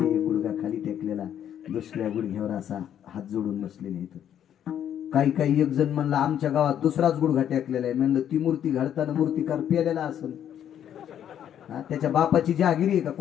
गुडघा खाली टेकलेला, दुसऱ्या गुडघ्यावर असा हात जोडून बसलेले आहेत. काही एक जण म्हणला आमच्या गावात दुसराच गुडघा टेकलेला आहे. म्हणलं ती मूर्ती घडताना मूर्तिकार पेलेला असेल. त्याच्या बापाची जहागिरी आहे का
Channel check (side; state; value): right; quieter; 9.9 dB